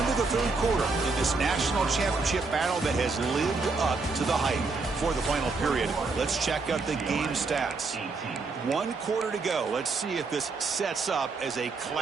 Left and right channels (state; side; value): quieter; left; 4.0 dB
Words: of the 3rd quarter in this national championship battle that has lived up to the hype. For the final period, let's check out the game stats. 1 quarter to go. Let's see if this sets up as a